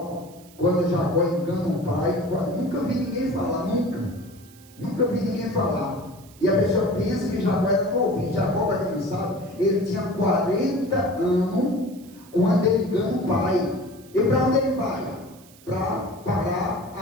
quando Jacó engana o pai, nunca vi ninguém falar, nunca vi ninguém falar. E a pessoa pensa que Jacó era novinho. Jacó, para quem não sabe, ele tinha 40 anos quando ele engana o pai. E para onde ele vai? Para parar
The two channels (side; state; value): right; noise; hiss, 24 dB below the sound